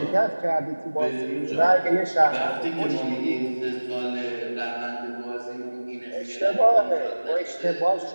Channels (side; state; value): both; inverted; correlation -1.00